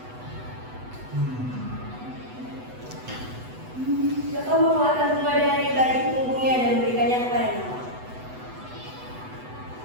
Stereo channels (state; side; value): late; left; 8.0 ms